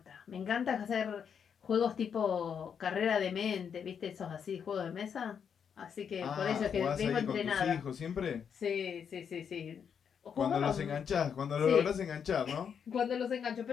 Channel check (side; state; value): right; quieter; 7.3 dB